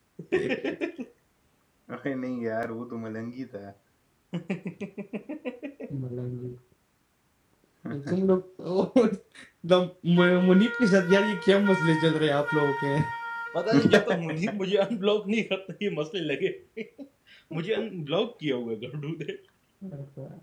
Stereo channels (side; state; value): both; identical; correlation 1.00